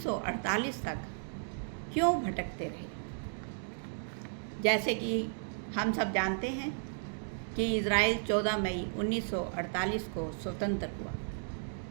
तक क्यों भटकते रहे। जैसे कि हम सब जानते हैं कि इजराइल 14 मई 1948 को स्वतंत्र हुआ।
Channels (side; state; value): left; silent; digital silence